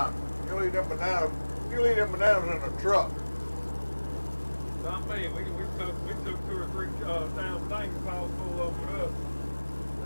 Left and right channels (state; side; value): inverted; both; correlation -1.00